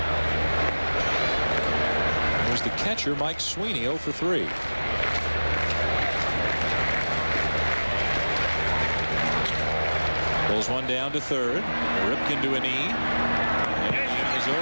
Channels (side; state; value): both; inverted; correlation -1.00